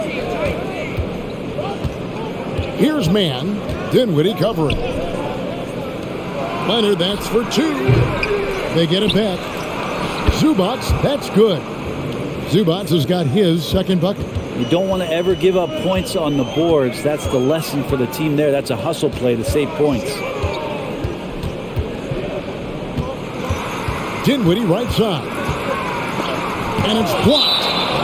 Here's man. Dinwiddie covering. Leonard, that's for 2. They get it back. Zubac, that's good. Zubac has got his second bucket. You don't want to ever give up points on the boards. That's the lesson for the team there. That's a hustle play to save points. Dinwiddie right side. And it's blocked.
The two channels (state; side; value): identical; both; correlation 1.00